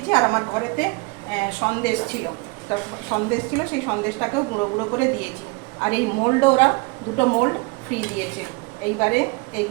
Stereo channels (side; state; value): left; quieter; 27.4 dB